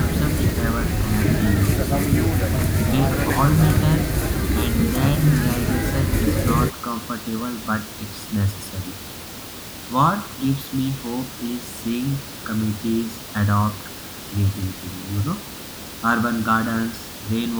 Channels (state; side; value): identical; both; correlation 1.00